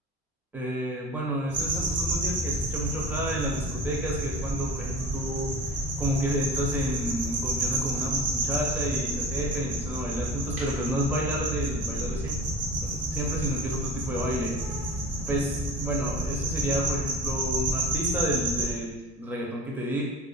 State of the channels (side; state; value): both; normal; correlation 0.36